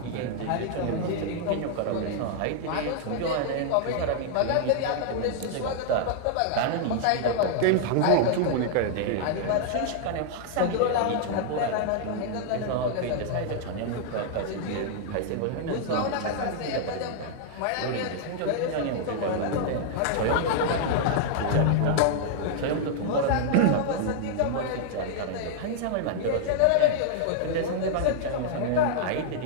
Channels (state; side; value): different; both; correlation -0.01